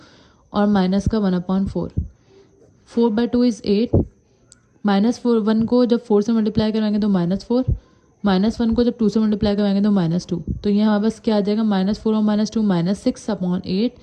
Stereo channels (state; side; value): identical; both; correlation 1.00